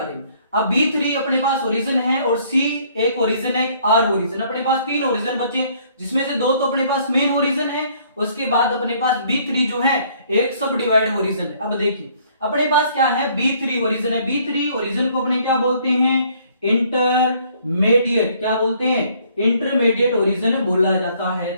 में। अब B3 अपने पास ओरिजिन है और C एक ओरिजिन है, एक R ओरिजिन। अपने पास 3 ओरिजिन बचे, जिसमें से 2 तो अपने पास मेन ओरिजिन है। उसके बाद अपने पास B3 जो है एक सब डिवाइड ओरिजिन है। अब देखिए अपने पास क्या है, B3 ओरिजिन है। B3 ओरिजिन को अपने क्या बोलते हैं, इंटरमीडिएट, क्या बोलते हैं, इंटरमीडिएट ओरिजिन बोला जाता है,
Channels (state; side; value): inverted; both; correlation -0.62